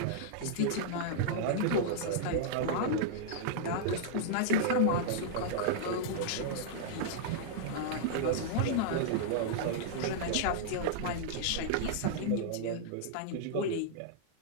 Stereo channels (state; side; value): different; both; correlation -0.01